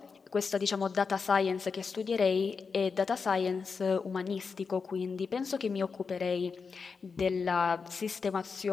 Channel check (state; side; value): quieter; right; 5.2 dB